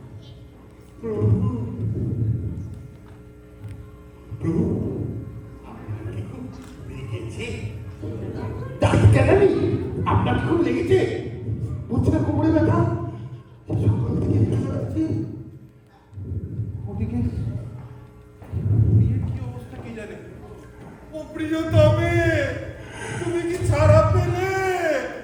আপনার খুব লেগেছে? বুঝছে না কোমরে ব্যথা? সকাল থেকে ব্যথা লাগছে। ওদিকে বিয়ের কি অবস্থা কি জানে? ও প্রিয়তমে, তুমি কি ছাড়া পেলে?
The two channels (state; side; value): identical; both; correlation 1.00